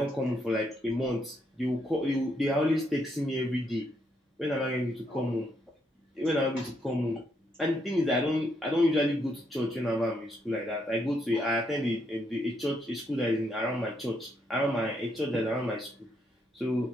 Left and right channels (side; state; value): both; normal; correlation 0.76